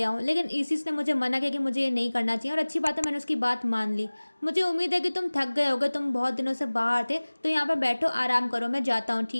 आऊं, लेकिन इसिस ने मुझे मना किया कि मुझे ये नहीं करना चाहिए और अच्छी बात है मैंने उसकी बात मान ली। मुझे उम्मीद है कि तुम थक गए होगे, तुम बहुत दिनों से बाहर थे, तो यहाँ पर बैठो आराम करो, मैं जाता हूँ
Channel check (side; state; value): both; inverted; correlation -1.00